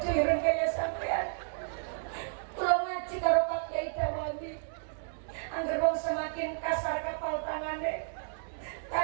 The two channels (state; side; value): silent; left; digital silence